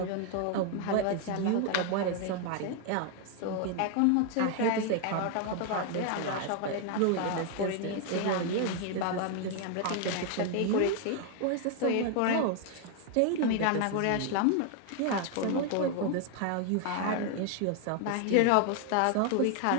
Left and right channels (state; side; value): different; both; correlation 0.00